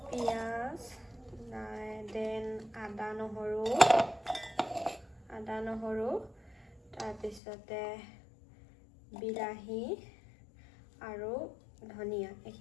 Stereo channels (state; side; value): drops out; right; at 7.4 s